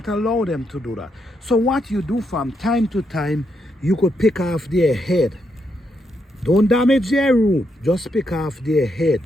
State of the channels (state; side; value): normal; both; correlation 0.80